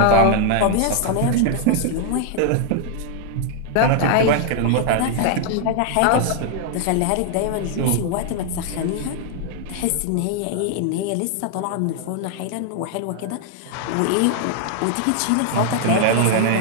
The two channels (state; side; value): different; both; correlation 0.00